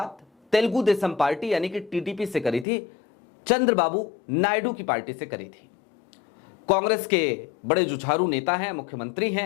तेलुगु देशम पार्टी यानी कि टीडीपी से करी थी, चंद्रबाबू नायडू की पार्टी से करी थी। कांग्रेस के बड़े जुझारू नेता हैं, मुख्यमंत्री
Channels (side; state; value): right; drops out; at 2.7 s